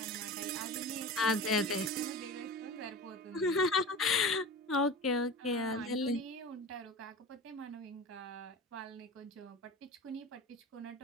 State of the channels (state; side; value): normal; both; correlation 0.32